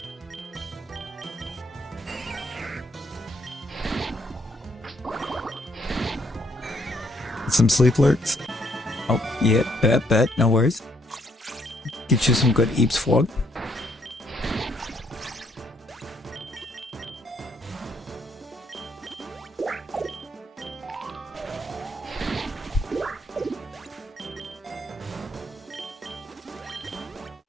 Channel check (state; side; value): normal; both; correlation 0.70